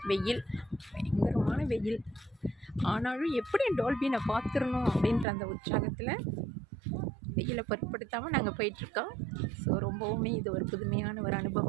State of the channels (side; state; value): left; drops out; at 5.2 s